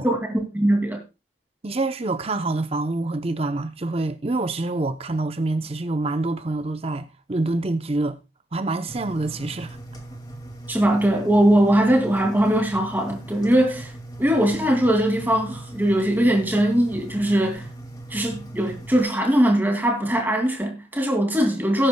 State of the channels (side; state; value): both; normal; correlation 0.82